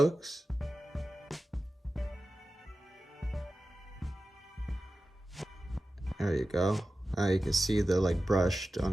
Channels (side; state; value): both; normal; correlation 0.94